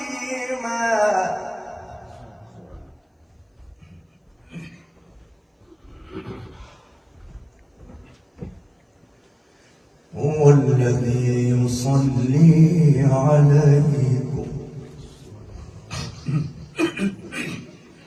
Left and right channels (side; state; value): both; identical; correlation 1.00